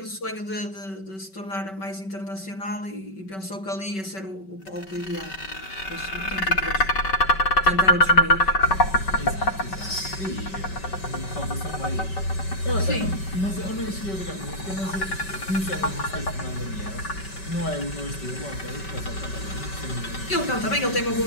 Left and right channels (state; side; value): late; right; 5.2 ms